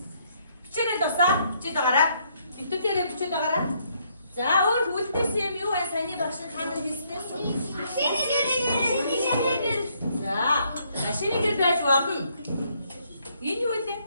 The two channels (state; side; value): inverted; both; correlation -0.70